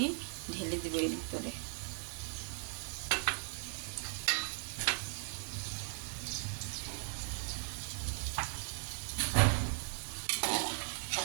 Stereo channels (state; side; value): silent; left; 52 dB below the other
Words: ঢেলে দেবো এর ভিতরে।